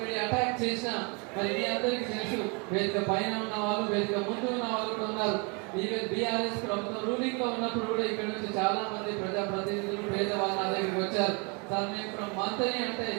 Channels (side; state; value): left; quieter; 32.8 dB